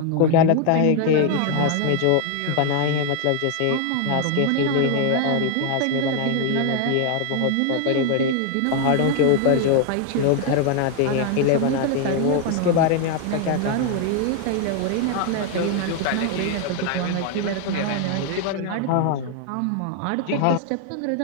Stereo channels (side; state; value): both; different; correlation 0.01